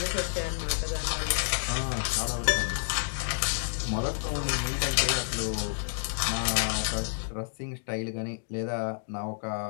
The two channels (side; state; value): right; silent; digital silence